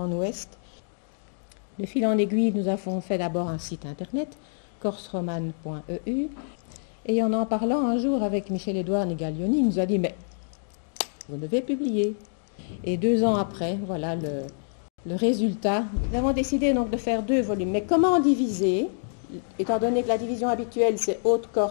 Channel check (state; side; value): silent; right; digital silence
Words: ouest. De fil en aiguille, nous avons fait d'abord un site internet, corseromane.eu. Et en parlant un jour avec Michel-Édouard Negaglioni, il nous a dit « mais vous devez publier ». Et 2 ans après, voilà le résultat. Nous avons décidé donc de faire 2 volumes. Mais comment diviser, étant donné que la division habituelle c'est